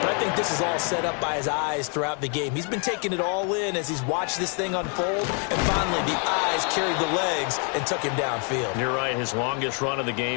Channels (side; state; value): right; quieter; 39.5 dB